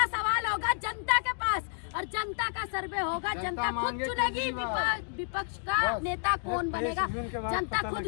सवाल होगा जनता के पास और जनता का सर्वे होगा। जनता खुद चुनेगी विपक्ष का नेता कौन बनेगा, जनता खुद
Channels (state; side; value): silent; right; digital silence